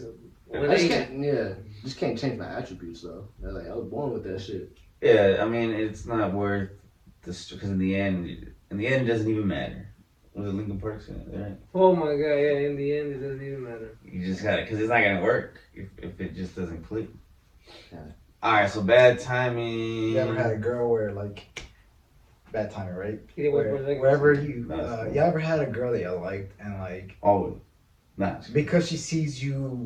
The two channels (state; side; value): identical; both; correlation 1.00